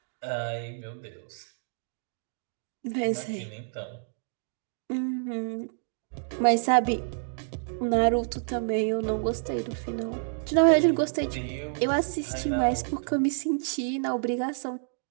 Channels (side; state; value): left; silent; digital silence